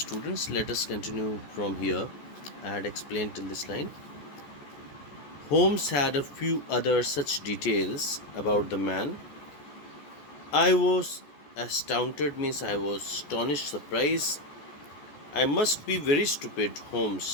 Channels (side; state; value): right; late; 14 ms